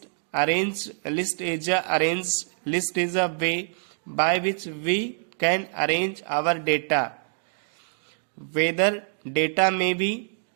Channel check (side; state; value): left; silent; digital silence